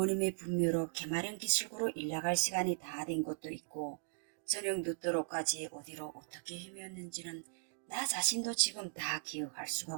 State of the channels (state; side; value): silent; left; digital silence